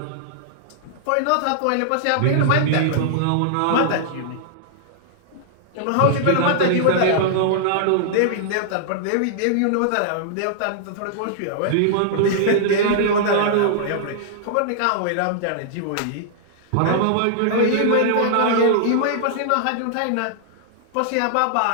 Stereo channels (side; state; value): both; different; correlation -0.01